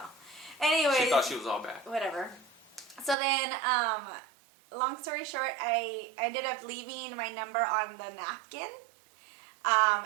Anyways. She thought she was all bad. Whatever. So then, long story short, I ended up leaving my number on the napkin.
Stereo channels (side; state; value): left; drops out; at 3.2 s